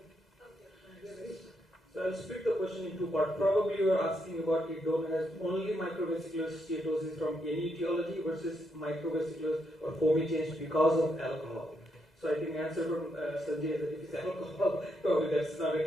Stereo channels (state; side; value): normal; both; correlation 0.79